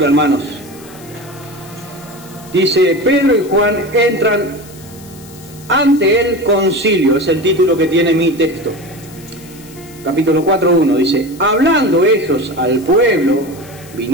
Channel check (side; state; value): left; noise; hiss, 21 dB below the sound